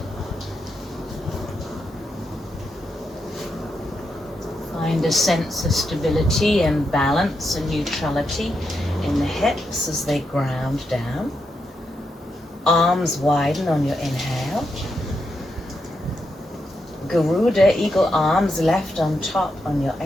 Find a sense of stability and balance and neutrality in the hips as they ground down. Arms widen on your inhale. Garuda, eagle arms left on top on your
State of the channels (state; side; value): normal; both; correlation 0.83